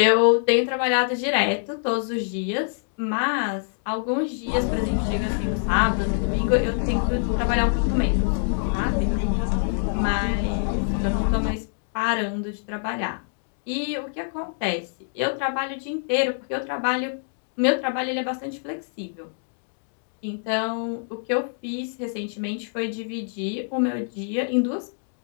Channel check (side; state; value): right; silent; digital silence